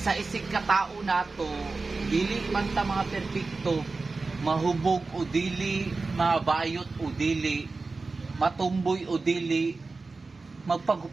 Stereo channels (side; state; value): left; quieter; 3.8 dB